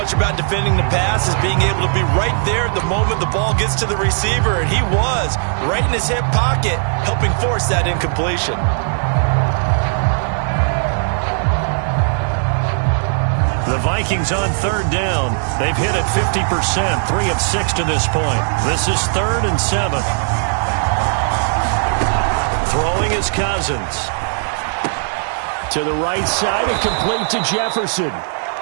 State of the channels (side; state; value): left; silent; digital silence